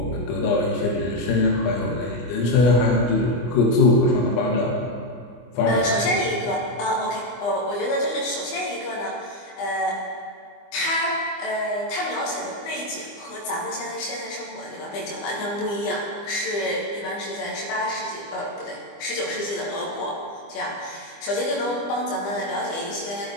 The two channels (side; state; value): right; late; 25 ms